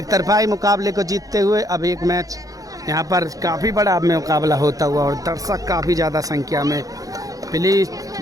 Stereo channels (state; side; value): late; left; 0.17 ms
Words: तरफाई मुकाबले को जीतते हुए अब एक मैच यहाँ पर काफ़ी बड़ा मुकाबला होता हुआ, और दर्शक काफ़ी ज़्यादा संख्या में। प्लीज़